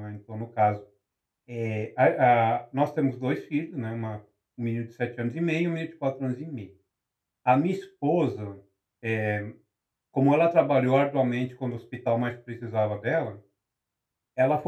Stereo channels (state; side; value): identical; both; correlation 1.00